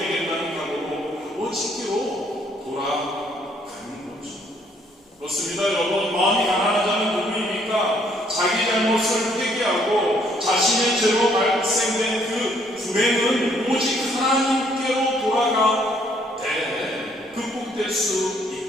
각오로 아버지께로 돌아가는 거죠. 그렇습니다. 여러분, 마음이 가난한 자는 누구입니까? 자기 잘못을 회개하고 자신의 죄로 발생된 그 불행은 오직 하나님께로 돌아가 극복될 수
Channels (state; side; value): normal; both; correlation 0.66